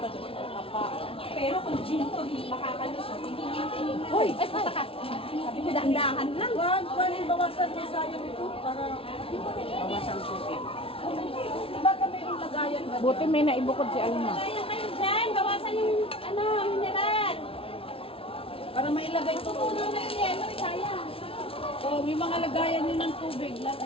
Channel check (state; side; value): late; right; 0.26 ms